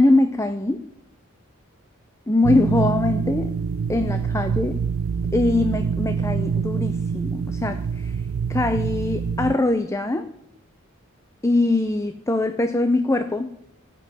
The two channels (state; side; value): normal; both; correlation 0.79